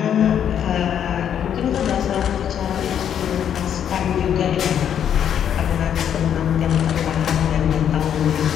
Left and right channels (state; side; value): quieter; right; 9.1 dB